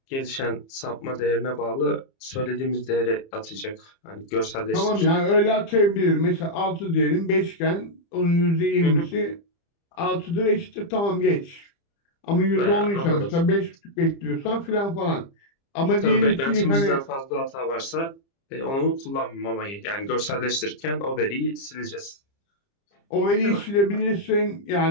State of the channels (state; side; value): late; right; 30 ms